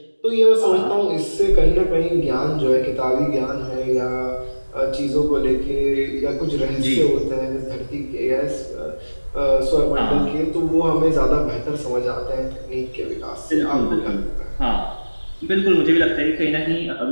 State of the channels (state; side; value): inverted; both; correlation -1.00